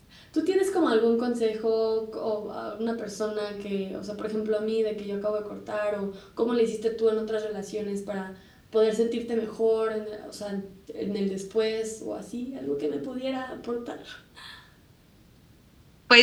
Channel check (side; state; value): both; identical; correlation 1.00